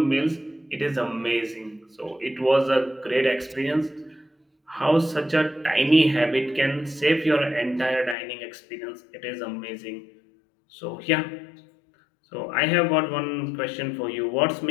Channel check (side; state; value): right; drops out; at 8.2 s